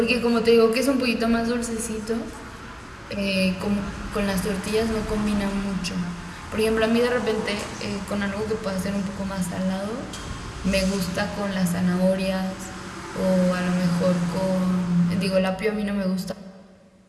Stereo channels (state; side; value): identical; both; correlation 1.00